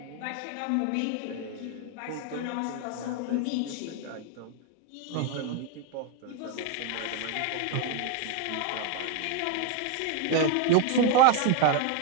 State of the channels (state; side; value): different; both; correlation 0.01